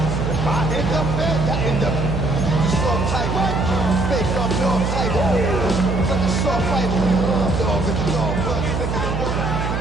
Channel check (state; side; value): noise; right; hum, 2 dB below the sound